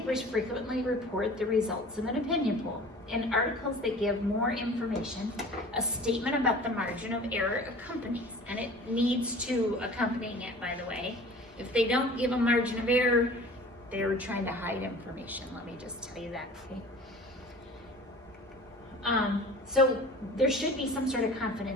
frequently report the results of an opinion poll. In articles that give more information, a statement about the margin of error accompanies, and it needs to accompanying it, by the way. If they don't give a margin of error, they're trying to hide information. Let me just tell you that, okay? So there should be some sort of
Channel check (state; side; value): normal; both; correlation 0.43